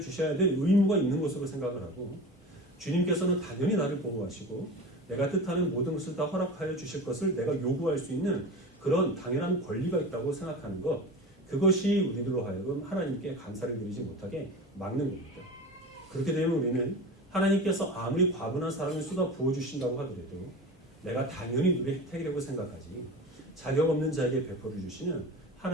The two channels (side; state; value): both; normal; correlation 0.32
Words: 될 의무가 있는 것으로 생각을 하고, 주님께서는 당연히 나를 보호하시고 내가 뜻하는 모든 것을 다 허락하여 주실 것을 내가 요구할 수 있는 그런 당연한 권리가 있다고 생각하는 것, 그것이 우리들로 하여금 하나님께 감사를 드리지 못하게 막는 겁니다. 그렇게 되면 우리는 하나님께서 아무리 과분한 사랑을 쏟아 부어주신다고 하더라도 내가 당연히 누릴 혜택이라고 생각하지 자격 없는 자에게 베풀어 주시는